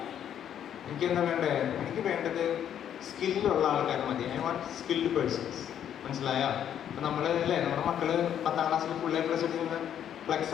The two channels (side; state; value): right; quieter; 9.7 dB